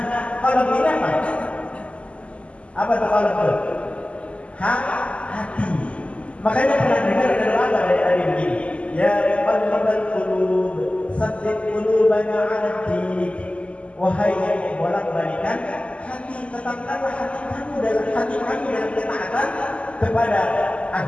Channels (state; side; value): late; right; 0.059 ms